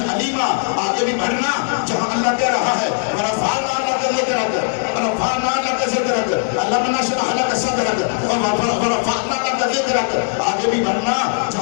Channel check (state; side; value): silent; right; digital silence